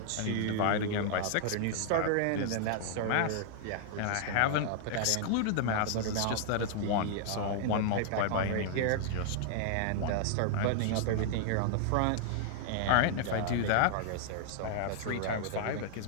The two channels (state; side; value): different; both; correlation -0.01